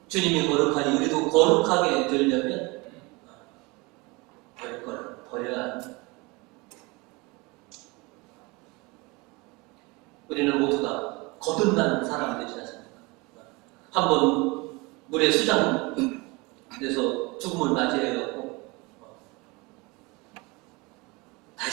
주님이 거룩하니 우리도 거룩하게 되려면 버릴 거는 버려야 합니다. 우리는 모두가 거듭난 사람들이지 않습니까? 한번 물에 수장돼서 죽음을 맞이해갖고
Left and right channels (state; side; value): quieter; left; 25.7 dB